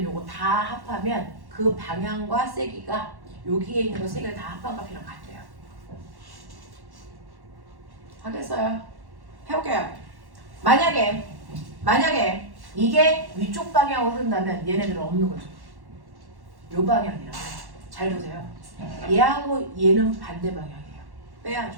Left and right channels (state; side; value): late; left; 1.1 ms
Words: 요거 다 합하면 그 방향과 세기가 여기에 있는 거 세 개를 다 합한 값이랑 같대요. 하겠어요? 해볼게요. 만약에 이게 위쪽 방향으로 흐른다면 얘네들은 없는 거죠. 요 방향이라고. 잘 보세요. 얘하고 얘는 반대 방향이에요.